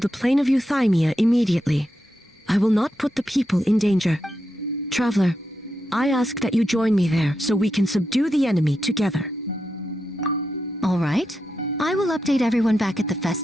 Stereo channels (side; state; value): both; normal; correlation 0.86